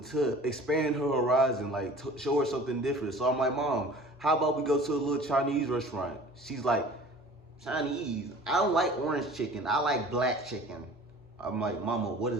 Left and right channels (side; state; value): both; normal; correlation 0.44